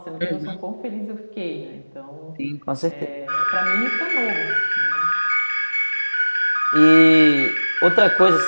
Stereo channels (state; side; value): inverted; both; correlation -1.00